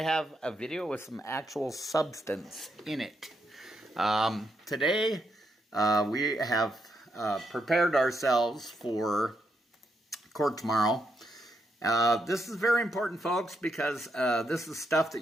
have a video with some actual substance in it. Today, we have prepared ourselves for court tomorrow. This is very important, folks, because this is stuff that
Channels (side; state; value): both; normal; correlation 0.80